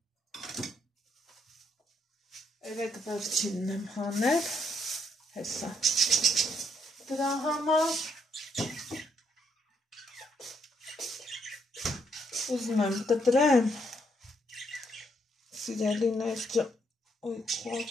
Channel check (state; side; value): normal; both; correlation 0.74